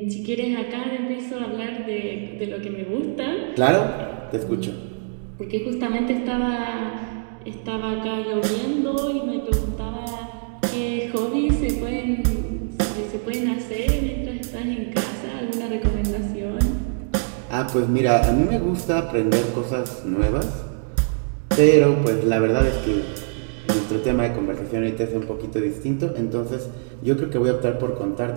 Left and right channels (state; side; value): silent; left; digital silence